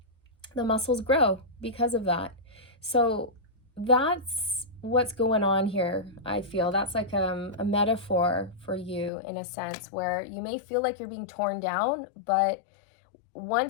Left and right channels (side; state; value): right; drops out; at 9.1 s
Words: the muscles grow because of that. So that's what's going on here. I feel that's like a metaphor for you in a sense where you may feel like you're being torn down, but